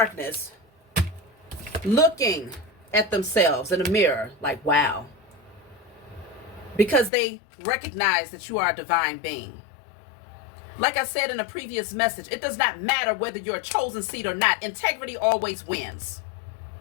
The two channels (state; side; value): drops out; right; at 7.1 s